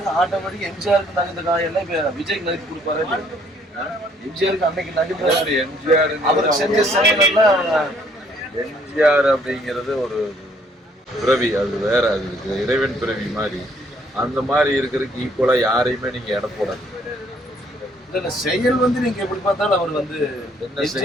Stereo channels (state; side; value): normal; both; correlation 0.64